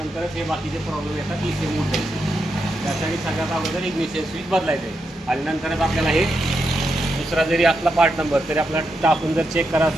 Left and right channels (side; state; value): both; normal; correlation 0.84